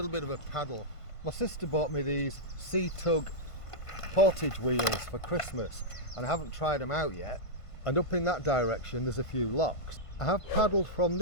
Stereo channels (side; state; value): right; late; 1.5 ms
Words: bit of a paddle. My sister bought me these C-Tug Portage wheels for Christmas and I haven't tried them out yet, and up in that direction there's a few locks. I have paddled from